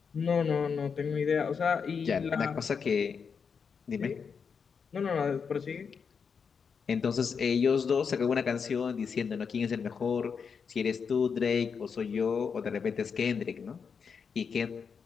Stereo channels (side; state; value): right; quieter; 6.1 dB